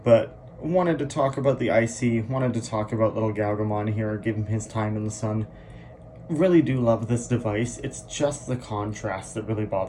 But wanted to talk about the IC, wanted to talk about little Galgamon here, give him his time in the sun. Really do love this device. It's just the contrast that really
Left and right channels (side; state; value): both; identical; correlation 1.00